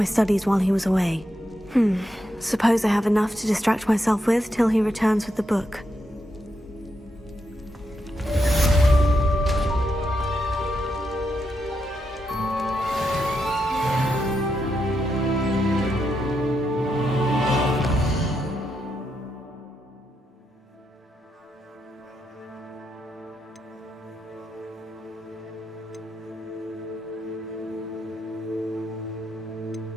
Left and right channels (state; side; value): normal; both; correlation 0.83